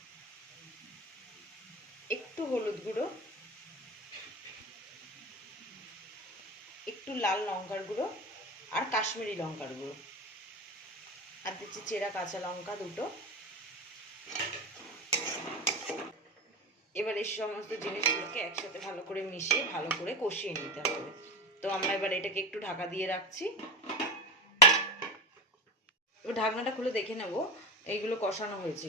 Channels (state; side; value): normal; both; correlation 0.21